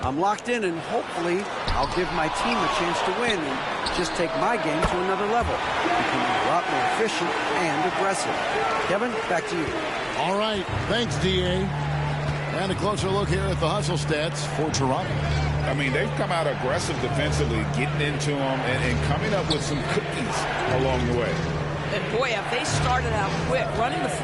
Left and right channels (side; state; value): both; identical; correlation 1.00